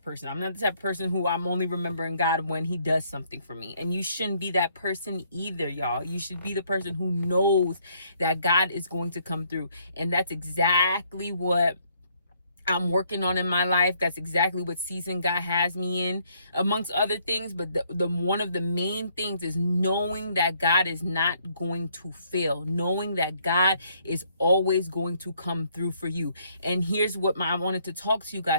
person. I'm not the type of person who I'm only remembering God when He does something for me. And you shouldn't be that person either, y'all. You should be the person who knows that God is going to come through. And that's exactly what I'm working on in my life. That's exactly what season God has me in, amongst other things. But the one of the main things is knowing that God is not going to fail, knowing that God is always going to come through for you. And here's what I wanted to talk to you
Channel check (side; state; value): both; inverted; correlation -0.68